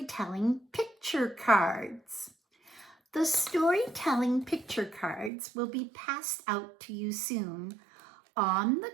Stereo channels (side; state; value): left; drops out; at 5.3 s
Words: picture cards. The storytelling picture cards will be passed out to you soon. On the